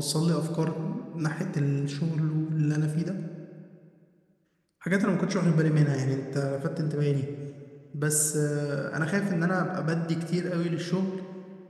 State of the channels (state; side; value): identical; both; correlation 1.00